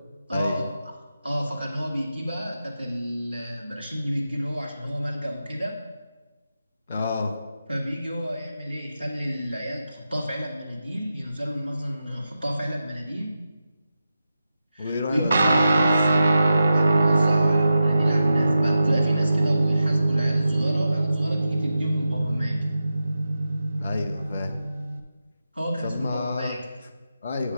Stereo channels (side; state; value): both; inverted; correlation -0.90